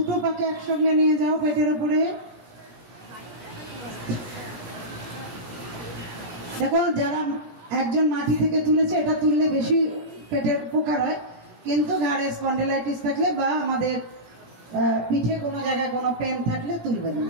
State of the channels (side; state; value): left; late; 18 ms